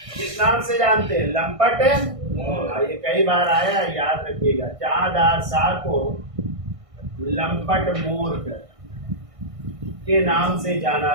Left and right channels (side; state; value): left; late; 1.6 ms